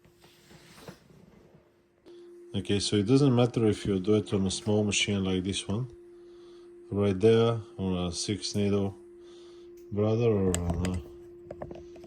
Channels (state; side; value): identical; both; correlation 1.00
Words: Okay, so it doesn't matter if you do it on a small machine like this one, right there, on a 6 needle brother, or on a